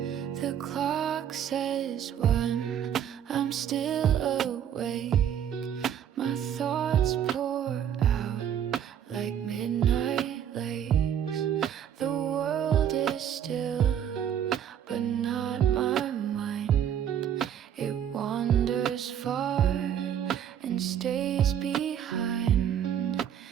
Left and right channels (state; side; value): quieter; left; 9.4 dB